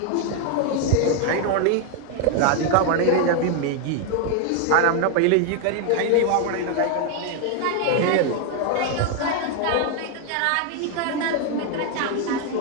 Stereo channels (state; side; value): different; both; correlation 0.01